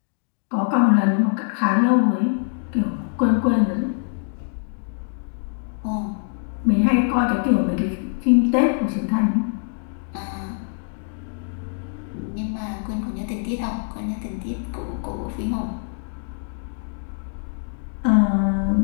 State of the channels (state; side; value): silent; right; digital silence